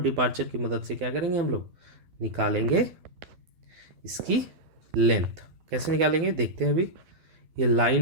डिपार्चर की मदद से क्या करेंगे, हम लोग निकालेंगे इसकी लेंथ। कैसे निकालेंगे देखते हैं अभी। ये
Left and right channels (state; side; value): late; left; 12 ms